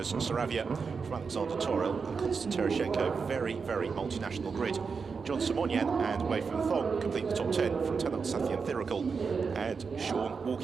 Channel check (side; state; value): left; quieter; 5.3 dB